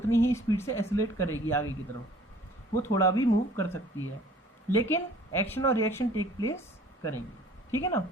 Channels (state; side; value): normal; both; correlation 0.52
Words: ही स्पीड से एक्सेलरेट करेगी आगे की तरफ, वो थोड़ा भी मूव कर सकती है, लेकिन एक्शन और रिएक्शन टेक प्लेस करेंगे, ठीक है ना।